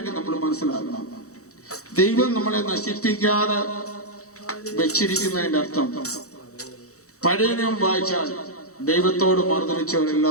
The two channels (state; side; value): late; right; 0.65 ms